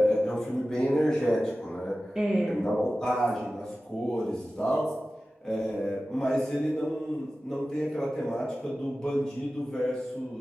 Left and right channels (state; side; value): normal; both; correlation 0.95